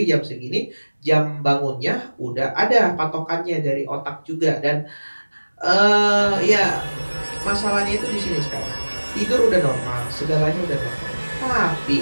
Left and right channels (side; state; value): both; inverted; correlation -1.00